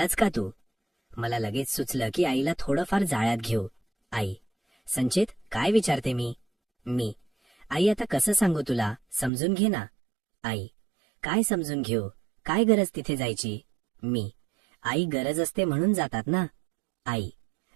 का तू? मला लगेच सुचलं की आईला थोडंफार जाळ्यात घेऊ. आई, संचित, काय विचारते मी? मी, आई, आता कसं सांगू तुला, समजून घे ना. आई, काय समजून घेऊ, काय गरज तिथे जायची? मी, आई, गरज असते म्हणून जातात ना. आई,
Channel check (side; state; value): left; drops out; at 9.3 s